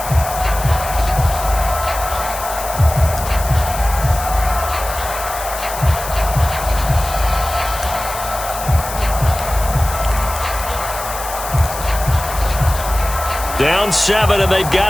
Down 7, and they've got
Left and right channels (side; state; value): left; noise; hiss, 10 dB below the sound